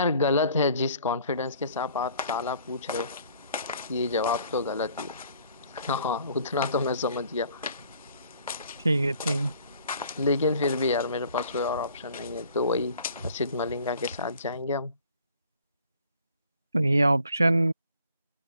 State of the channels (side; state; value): both; inverted; correlation -0.56